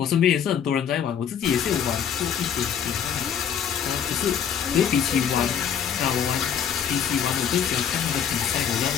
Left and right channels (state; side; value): quieter; right; 8.2 dB